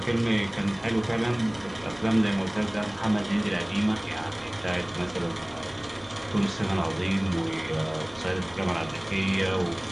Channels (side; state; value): right; noise; rumble, 26 dB below the sound